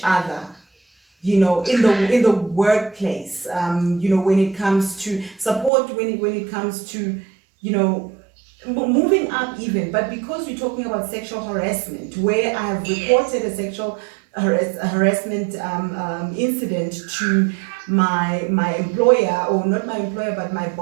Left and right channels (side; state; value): left; drops out; at 5.7 s